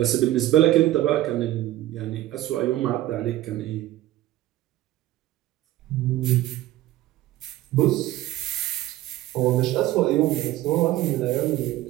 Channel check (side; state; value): left; quieter; 15.0 dB